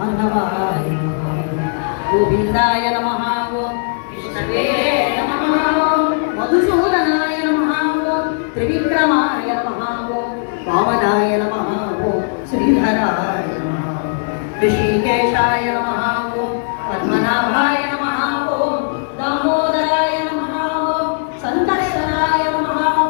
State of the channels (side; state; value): right; silent; digital silence